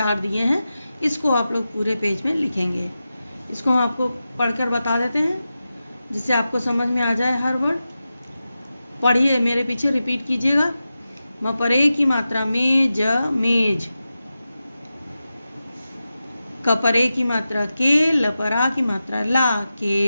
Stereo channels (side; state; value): both; inverted; correlation -0.92